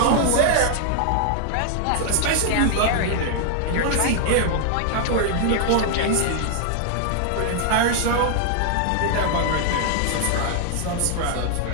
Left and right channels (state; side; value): different; both; correlation 0.00